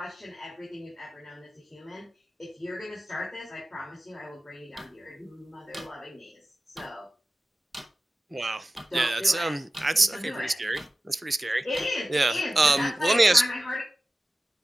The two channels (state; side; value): normal; both; correlation 0.95